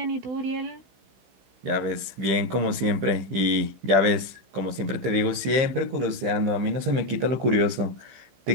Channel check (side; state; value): left; late; 15 ms